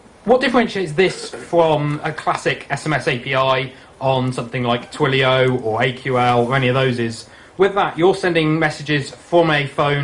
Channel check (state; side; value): identical; both; correlation 1.00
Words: What differentiates this from a classic SMS API on something like Twilio or AQL or any of those is, with that, you're sending messages from a